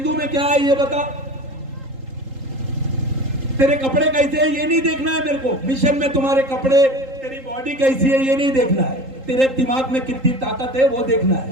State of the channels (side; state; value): left; late; 3.8 ms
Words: में क्या है ये बता, तेरे कपड़े कैसे है ये नहीं देखना है मेरे को। मिशन में तुम्हारे कपड़े, तेरी बॉडी कैसी है ये नहीं देखना है, तेरे दिमाग में कितनी ताकत है वो देखना